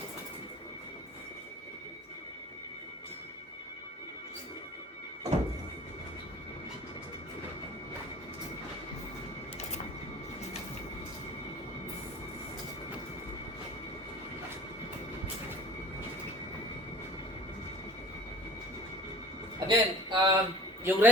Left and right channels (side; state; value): both; normal; correlation 0.45